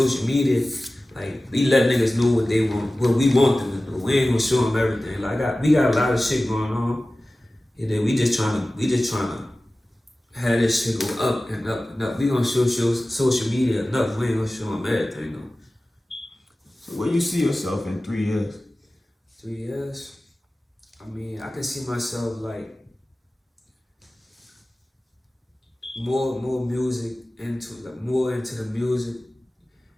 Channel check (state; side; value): normal; both; correlation 0.97